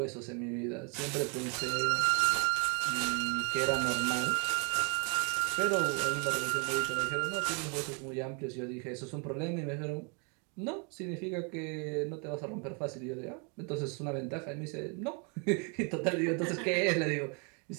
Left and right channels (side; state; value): left; quieter; 35.8 dB